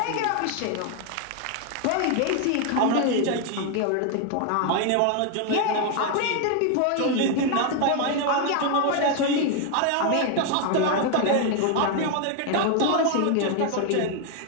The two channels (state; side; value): different; both; correlation 0.00